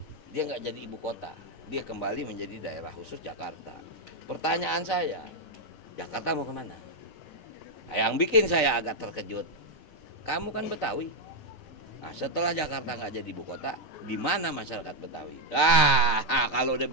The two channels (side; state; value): right; late; 6.6 ms